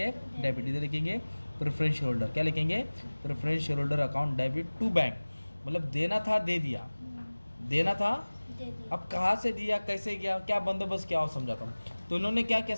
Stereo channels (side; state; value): both; inverted; correlation -1.00